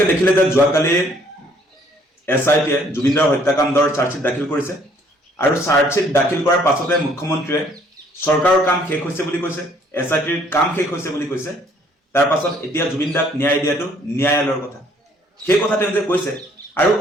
দেখিলে যে যোৱাকালি SITয়ে জুবিনদাৰ হত্যাকাণ্ডৰ চাৰ্জশ্বিট দাখিল কৰিছে আৰু চাৰ্জশ্বিট দাখিল কৰাৰ পাছতে মুখ্যমন্ত্ৰীয়ে চৰকাৰৰ কাম শেষ হৈছে বুলি কৈছে, SITৰ কাম শেষ হৈছে বুলি কৈছে। তাৰ পাছত এতিয়া জুবিনদাক ন্যায় দিয়াটো ন্যায়ালয়ৰ কথা, সেই কথা তেওঁ যে কৈছে। আৰু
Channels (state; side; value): normal; both; correlation 0.62